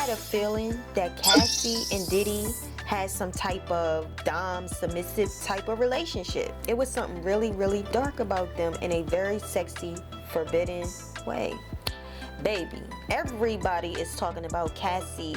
a feeling that Cassie and Diddy had some type of dom submissive type of relationship. It was something really, really dark about them in a very sexy, forbidden way. Baby, everybody is talking about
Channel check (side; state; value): both; identical; correlation 1.00